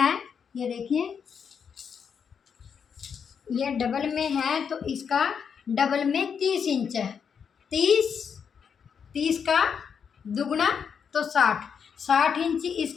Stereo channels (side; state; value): right; quieter; 6.9 dB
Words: ये देखिए ये डबल में है तो इसका डबल में 30 इंच है। 30 का दुगना तो 60 इंच